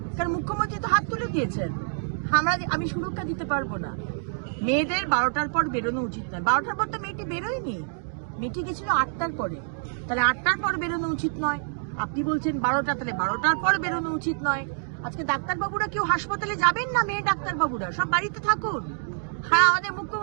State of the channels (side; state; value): left; silent; digital silence